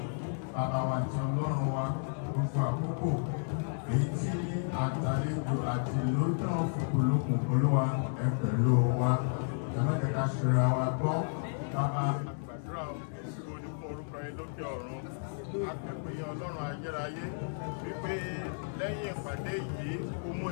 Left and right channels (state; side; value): silent; right; digital silence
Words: bàbá wa àti ọlọ́run wa gbogbo àkókò èyí tí àtàlejò àti ìlú náà fòkòlókùn olúwa ẹ pẹ̀lú wa ẹ̀mẹ́tẹ̀ká ṣera wa gbọ́ bàbá. Àgbàdúrà òṣìṣẹ́ onífọ̀ orúkọ yín lókè ọ̀run akẹ́kọ̀ọ́ ọlọ́run ayérayé wípé lẹ́yìn ìpàdé yìí ó mú